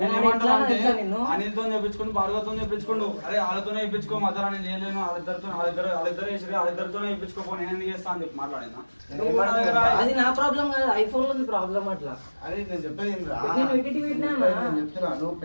అనిల్తో చెప్పించుకుని భార్గవతో చెప్పించుకోండు. అరే వాళ్ళతోనే చెప్పించుకో మధ్యలో నేను చేయలేను వాళ్ళిద్దరు వేసి వాళ్ళిద్దరితోనే చెప్పించుకోపో నేను ఎందుకు చేస్తా అని చెప్పి మాట్లాడినా. అది నా ప్రాబ్లం కాదు ఐఫోన్ లో ప్రాబ్లం అట్లా. అరే నేను చెప్పేది నేను ఎడిట్ పెట్టినా చెప్తున్నా నువ్వు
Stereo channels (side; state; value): both; inverted; correlation -1.00